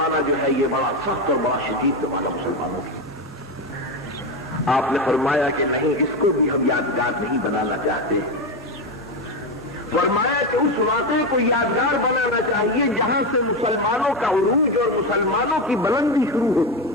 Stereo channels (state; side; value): normal; both; correlation 0.14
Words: جو ہے یہ بڑا سخت اور بڑا شدید زمانہ مسلمانوں کی۔ آپ نے فرمایا کہ نہیں، اس کو بھی ہم یادگار نہیں بنانا چاہتے، فرمایا کہ اس واقعے کو یادگار بنانا چاہیے جہاں سے مسلمانوں کا عروج اور مسلمانوں کی بلندی شروع ہوتی